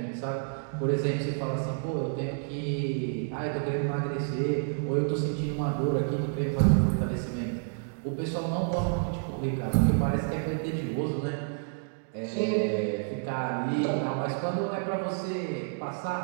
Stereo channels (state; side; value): silent; left; digital silence